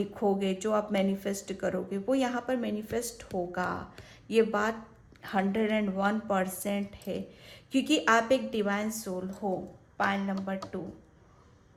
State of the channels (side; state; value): both; identical; correlation 1.00